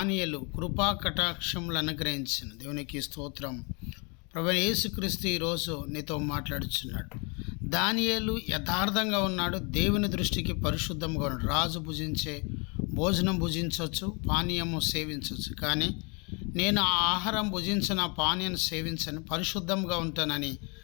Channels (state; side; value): quieter; right; 32.8 dB